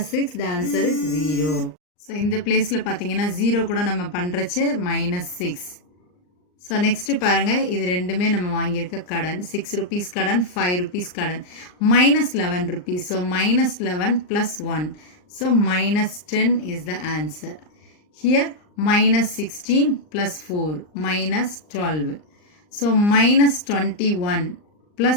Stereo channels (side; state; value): right; late; 39 ms